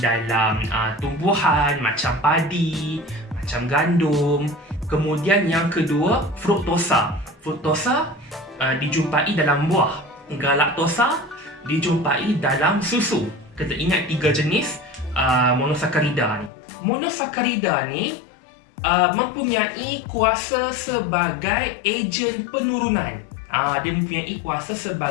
tumbuhan macam padi, macam gandum. Kemudian yang kedua, fruktosa. Fruktosa dijumpai dalam buah. Galaktosa dijumpai dalam susu. Kita ingat 3 jenis monosakarida ni. Monosakarida ni mempunyai kuasa sebagai ejen penurunan. Dia mempunyai kuasa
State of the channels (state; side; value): drops out; right; at 16.5 s